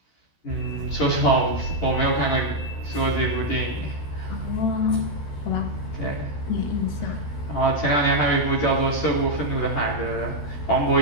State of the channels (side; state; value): right; late; 13 ms